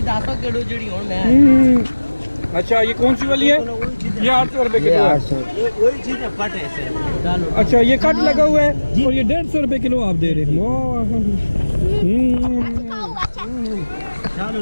10 किलो जड़ी हो मैं। अच्छा, ये कौन सी वाली है? ये 800 रुपये किलो है। वही चीज है पट ऐसे डालो। अच्छा, ये कट लगा हुआ है और ये 150 रुपये किलो आप दे रहे हैं।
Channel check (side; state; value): both; inverted; correlation -1.00